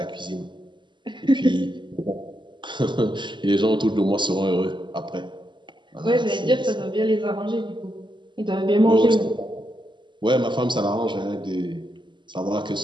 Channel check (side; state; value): left; late; 0.23 ms